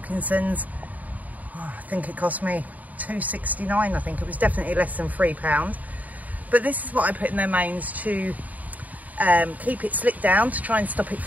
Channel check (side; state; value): left; late; 0.076 ms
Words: Oh, I think it cost me £2.69. I think it was definitely less than £3. But this is what I put in their manes to keep it slicked down, to try and stop it